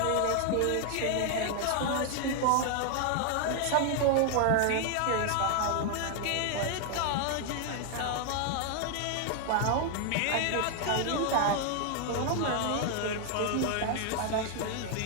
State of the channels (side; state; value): both; different; correlation 0.00